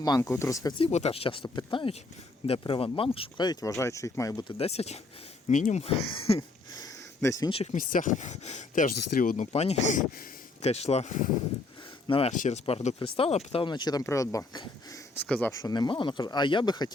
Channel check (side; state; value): right; quieter; 3.2 dB